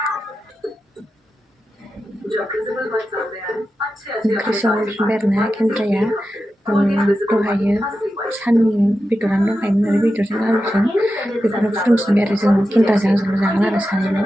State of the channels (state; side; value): normal; both; correlation 0.91